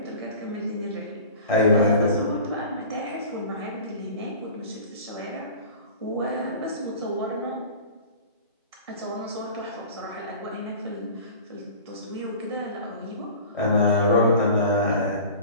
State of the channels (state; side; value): inverted; both; correlation -0.40